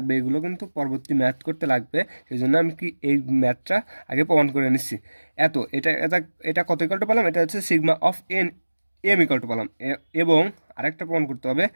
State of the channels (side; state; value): both; inverted; correlation -1.00